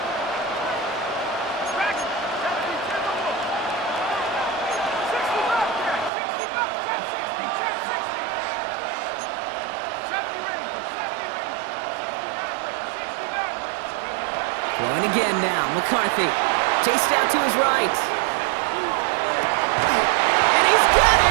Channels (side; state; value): left; drops out; at 6.1 s